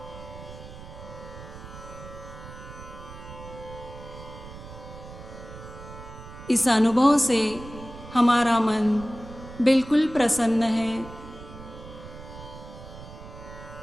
इस अनुभव से हमारा मन बिल्कुल प्रसन्न है।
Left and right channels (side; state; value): right; noise; rumble, 14 dB below the sound